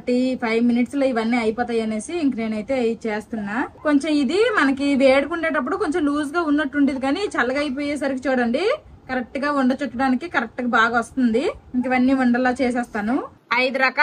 5 minutes లో ఇవన్నీ అయిపోతాయి అనేసి ఇంక నేనైతే చేస్తున్నా. కొంచెం ఇది మనకి వేడుకుండేటప్పుడు కొంచెం లూజ్ గా ఉన్నట్టుండేది, కానీ చల్లగా అయిపోయేసరికి చూడండి కరెక్ట్ గా వండ చుట్టడానికి కరెక్ట్ గా బాగా వస్తుంది. ఇంక ఇవన్నీ వండలా చేసేస్తాను. 5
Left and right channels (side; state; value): both; identical; correlation 1.00